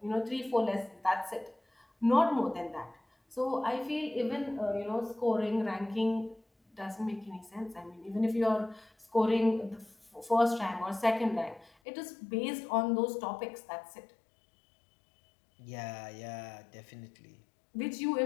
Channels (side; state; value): right; drops out; at 11.7 s